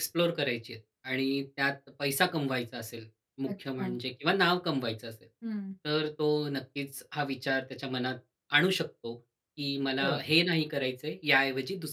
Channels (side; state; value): both; identical; correlation 1.00